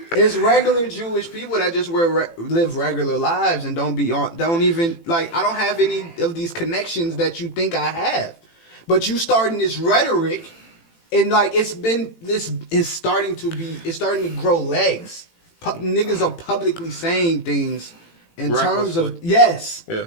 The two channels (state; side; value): late; right; 18 ms